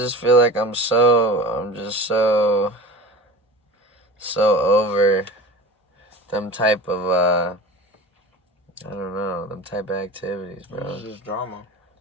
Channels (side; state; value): both; normal; correlation 0.35